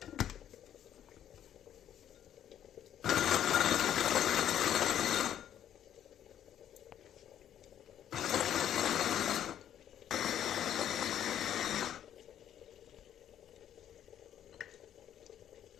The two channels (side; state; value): right; quieter; 10.4 dB